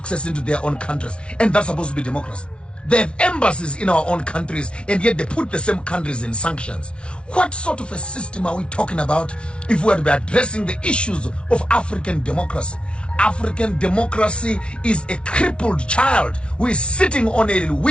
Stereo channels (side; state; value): right; late; 0.058 ms